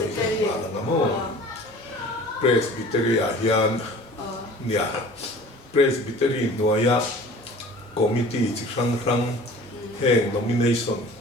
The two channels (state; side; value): normal; both; correlation 0.44